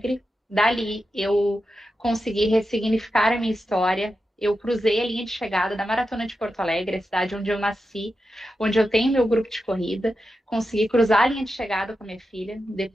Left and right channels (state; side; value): normal; both; correlation 0.89